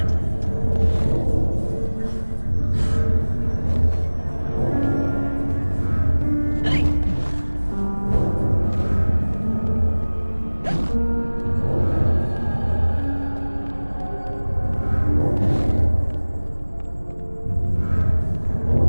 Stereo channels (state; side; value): inverted; both; correlation -1.00